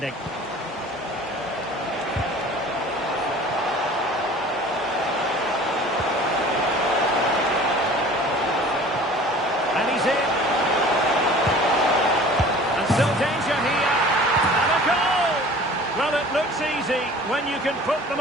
And he's in. And still danger here. And a goal! Well, it looks easy when you can put them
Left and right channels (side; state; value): both; normal; correlation 0.45